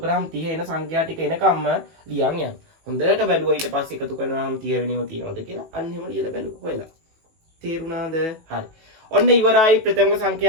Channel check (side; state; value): left; late; 18 ms